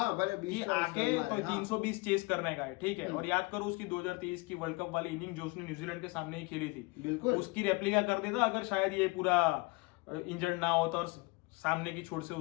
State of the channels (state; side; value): quieter; right; 26.3 dB